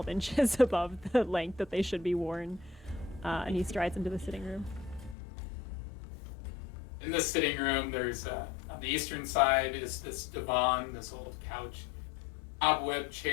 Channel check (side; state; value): right; drops out; at 5.2 s